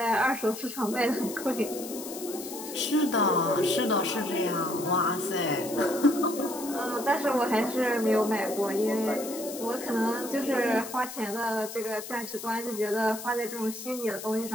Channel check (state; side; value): noise; left; hiss, 11 dB below the sound